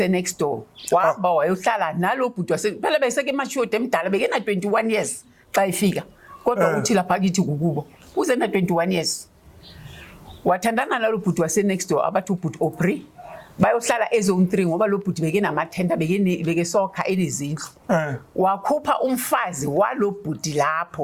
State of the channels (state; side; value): identical; both; correlation 1.00